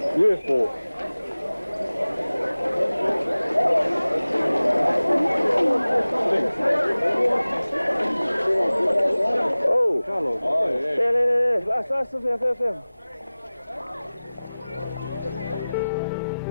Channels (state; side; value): inverted; both; correlation -0.98